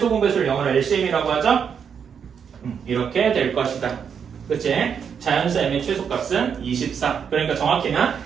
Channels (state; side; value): quieter; left; 7.2 dB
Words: 공배수를 영어로 LCM이라고 하죠? 이렇게 될 것이다. 그치? 자연수 m의 최소값은 24. 그러니까 정확히는